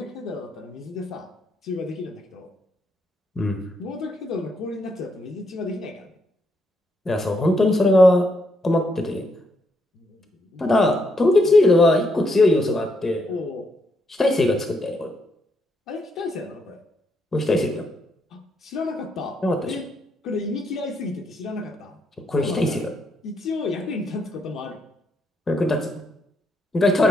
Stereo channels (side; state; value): both; normal; correlation 0.77